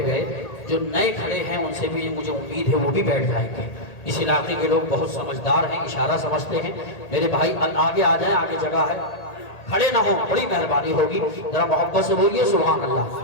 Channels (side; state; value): right; late; 1.8 ms